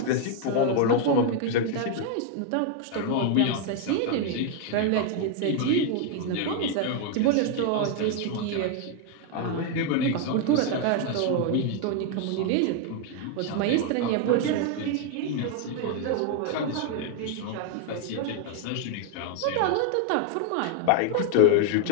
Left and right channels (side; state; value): both; different; correlation 0.00